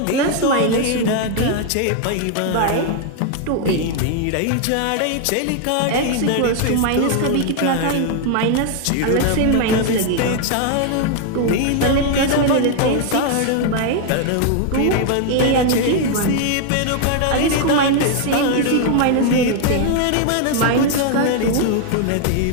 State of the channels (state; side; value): different; both; correlation 0.00